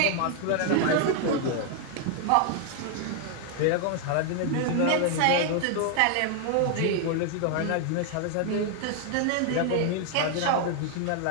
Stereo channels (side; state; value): both; different; correlation 0.00